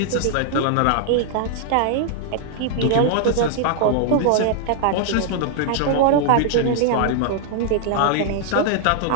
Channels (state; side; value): different; both; correlation -0.01